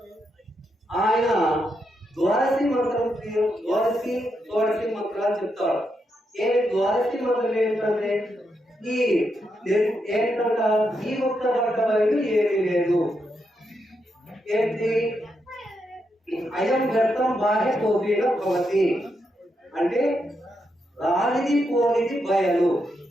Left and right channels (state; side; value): normal; both; correlation 0.82